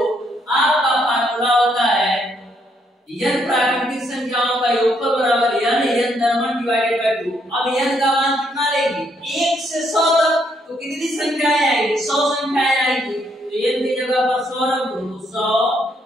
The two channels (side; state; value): both; normal; correlation 0.73